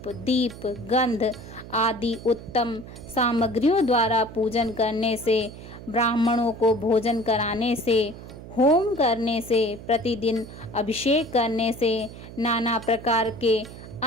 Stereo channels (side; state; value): right; noise; hum, 14 dB below the sound